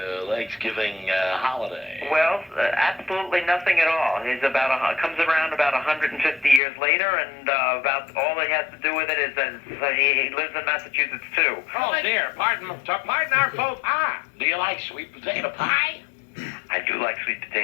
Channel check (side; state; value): right; drops out; at 6.6 s